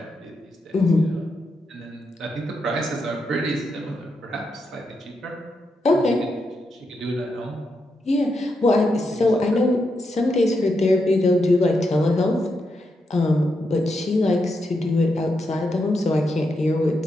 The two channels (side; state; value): both; normal; correlation 0.84